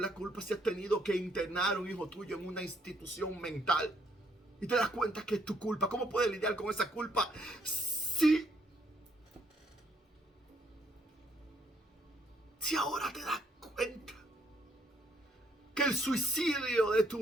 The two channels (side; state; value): both; normal; correlation 0.70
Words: la culpa si has tenido que internar a un hijo tuyo en una institución mental y te das cuenta que es tu culpa? ¿Cómo puedes lidiar con esa culpa si ahora te das cuenta que el suicidio de